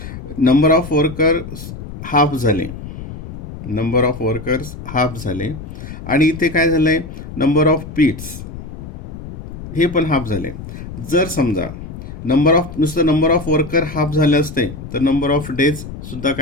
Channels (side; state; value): left; noise; rumble, 11 dB below the sound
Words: नंबर ऑफ वर्कर्स हाफ झाले, नंबर ऑफ वर्कर्स हाफ झाले आणि इथे काय झालंय, नंबर ऑफ पीट्स हे पण हाफ झाले. जर समजा नुसतं नंबर ऑफ वर्कर हाफ झाले असते तर नंबर ऑफ डेज सुद्धा